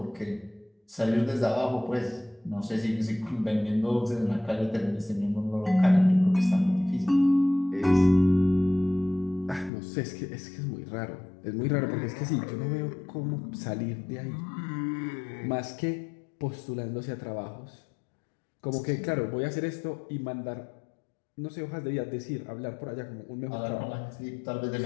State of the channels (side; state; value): right; drops out; at 9.7 s